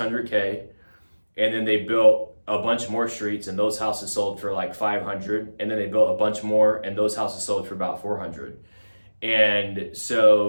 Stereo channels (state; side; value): inverted; both; correlation -1.00